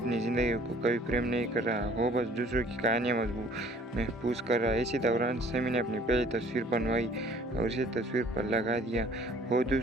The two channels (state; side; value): normal; both; correlation 0.55